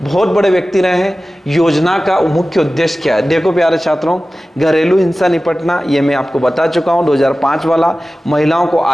बहुत बड़े व्यक्ति रहे हैं। योजना का मुख्य उद्देश्य क्या है, देखो प्यारे छात्रों, घरेलू हिंसा निपटना, ये मैं आपको बता चुका हूं 2005 वाला। महिलाओं को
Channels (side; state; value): both; normal; correlation 0.96